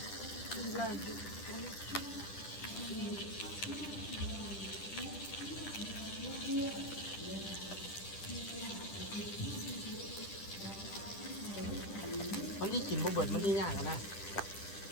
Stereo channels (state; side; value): late; right; 10 ms